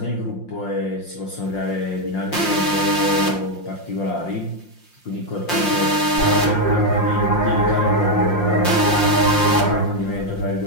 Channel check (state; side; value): late; right; 5.7 ms